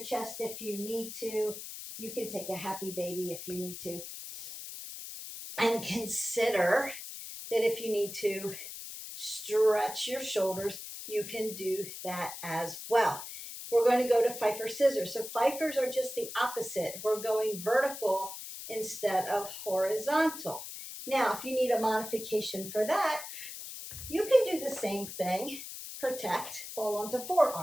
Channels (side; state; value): left; noise; hiss, 10 dB below the sound